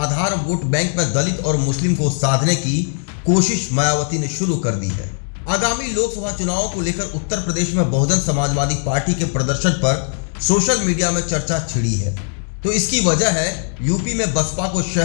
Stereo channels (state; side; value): silent; right; digital silence